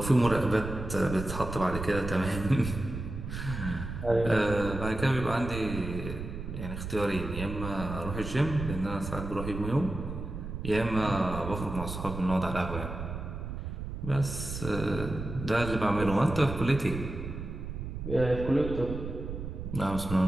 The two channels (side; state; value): right; noise; rumble, 7 dB below the sound